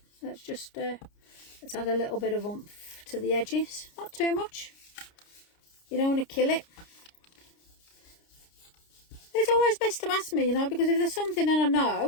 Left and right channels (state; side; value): late; right; 29 ms